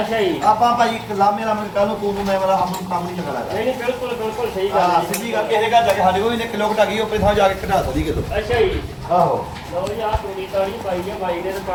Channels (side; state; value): both; identical; correlation 1.00